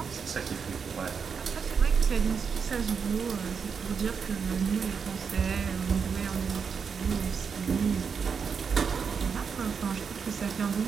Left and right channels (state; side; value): quieter; left; 6.1 dB